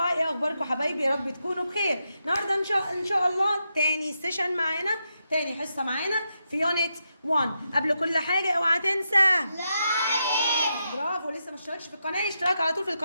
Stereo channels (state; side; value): inverted; both; correlation -0.85